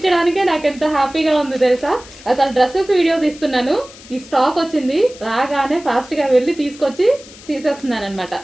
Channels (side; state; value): left; noise; hiss, 20 dB below the sound